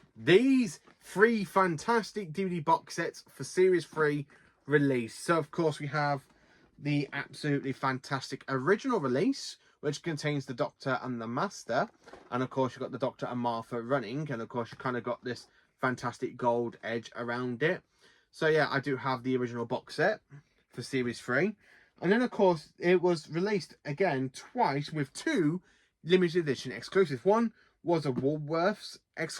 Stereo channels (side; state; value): both; identical; correlation 1.00